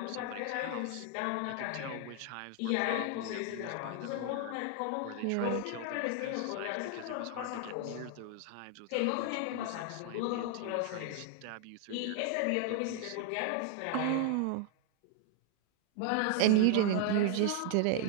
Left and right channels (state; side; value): different; both; correlation 0.00